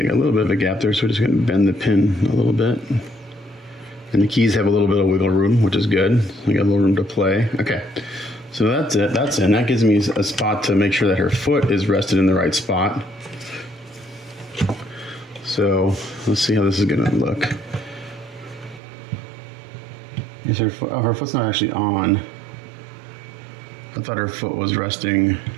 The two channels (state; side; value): drops out; left; at 18.8 s